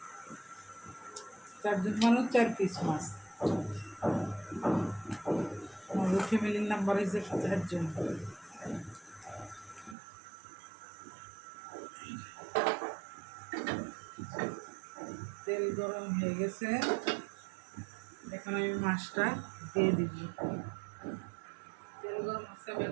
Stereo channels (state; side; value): drops out; left; at 10.0 s